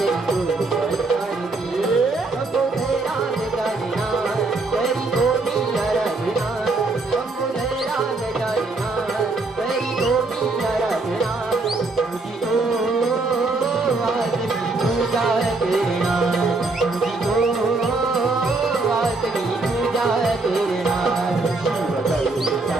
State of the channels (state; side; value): quieter; left; 3.4 dB